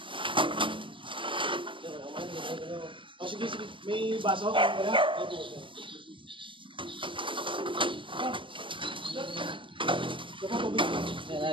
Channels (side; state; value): left; late; 0.25 ms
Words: O sige, may baso ka kaya?